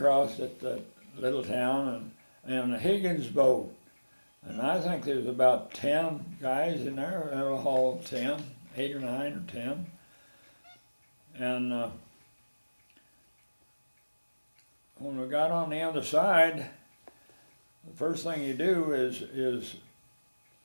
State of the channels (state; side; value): inverted; both; correlation -1.00